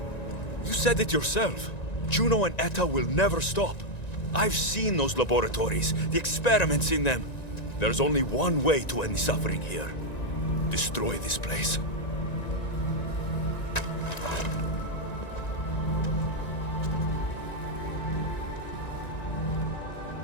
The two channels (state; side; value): late; right; 1.9 ms